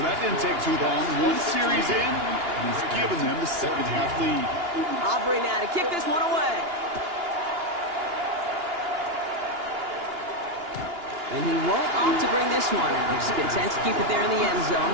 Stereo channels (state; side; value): late; left; 2.9 ms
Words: that didn't take too long. One series in, and he's given them the second half lead. Aubrey now to kick this one away. And he won't opt to bring this one out. He's content to keep it there in the end zone.